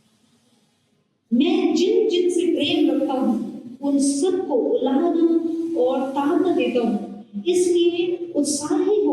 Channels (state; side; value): identical; both; correlation 1.00